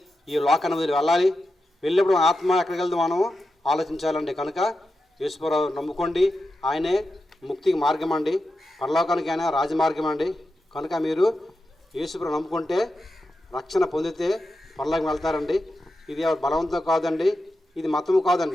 ఈ లోకాన్ని వదిలి వెళ్ళాలి. వెళ్ళినప్పుడు మన ఆత్మ ఎక్కడికి వెళ్తే మనం ఆలోచించాలండి. కనుక యేసుప్రభువు నమ్ముకోండి. ఆయనే ముక్తికి మార్గం అండి, పరలోకానికి ఆయన రాజమార్గం అండి. కనుక మీరు యేసుప్రభువు నమ్ముకుంటే రక్షణ పొందితే పరలోకం వెళ్తారండి. ఇది బలవంతం కాదండి, ఇది మతము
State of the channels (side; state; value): both; normal; correlation 0.90